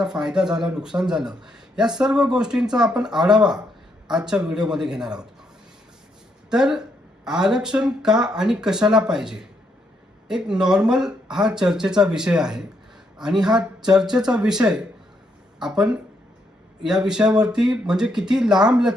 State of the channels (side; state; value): both; normal; correlation 0.76